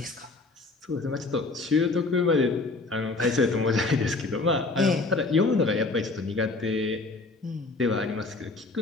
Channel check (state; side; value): quieter; right; 3.5 dB